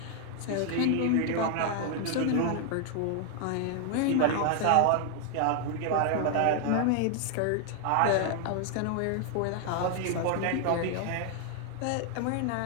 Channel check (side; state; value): both; different; correlation 0.00